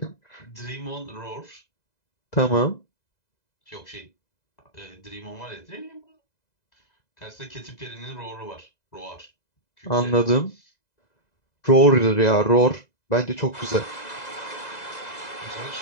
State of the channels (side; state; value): right; late; 2.0 ms